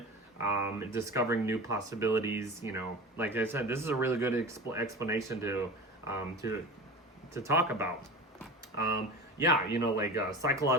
discovering new possibilities. You know, like I said, this is a really good explanation to talk about. Yeah, you know, like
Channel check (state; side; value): normal; both; correlation 0.32